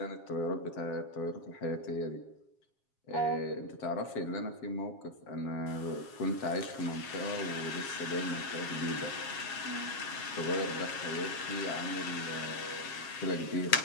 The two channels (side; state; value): right; late; 7.4 ms